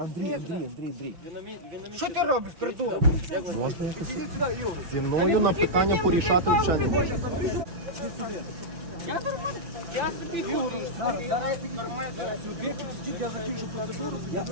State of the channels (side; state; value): left; late; 5.9 ms